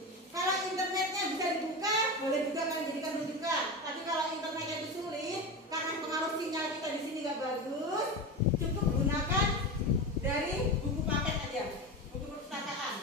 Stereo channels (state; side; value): normal; both; correlation 0.23